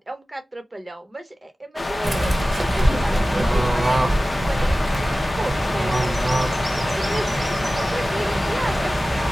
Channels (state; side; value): normal; both; correlation 0.96